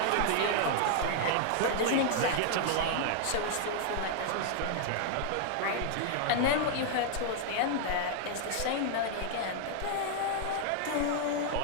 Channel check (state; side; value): different; both; correlation -0.01